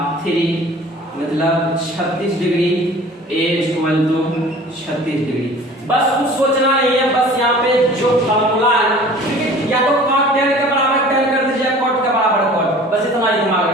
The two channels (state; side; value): normal; both; correlation 0.45